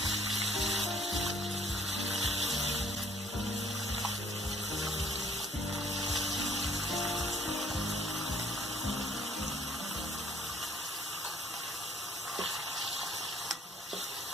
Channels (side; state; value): both; normal; correlation 0.59